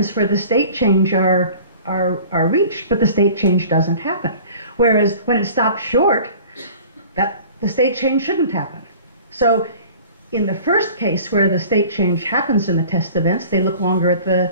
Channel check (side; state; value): both; inverted; correlation -0.45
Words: for the state change are reached, but the state change doesn't happen. Whereas when it stops short, the state change shouldn't happen. So in the first case where the state change happens in the test events, they look longer at